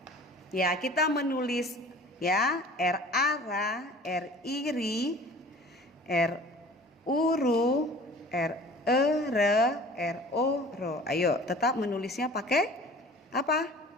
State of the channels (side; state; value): both; normal; correlation 0.45